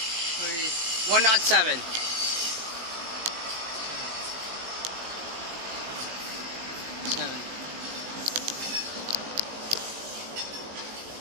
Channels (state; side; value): late; left; 18 ms